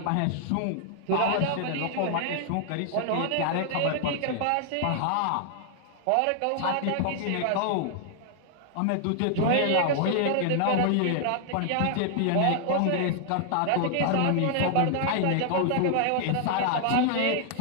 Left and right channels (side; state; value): both; different; correlation 0.00